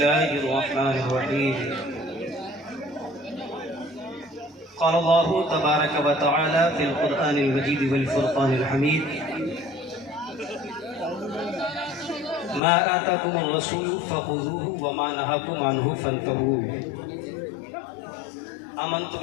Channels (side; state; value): right; drops out; at 12.6 s